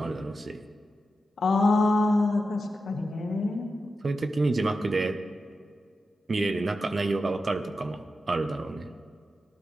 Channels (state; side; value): normal; both; correlation 0.90